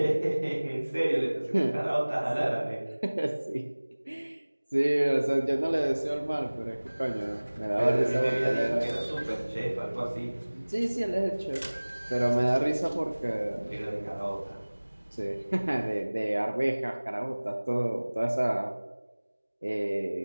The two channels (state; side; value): inverted; both; correlation -1.00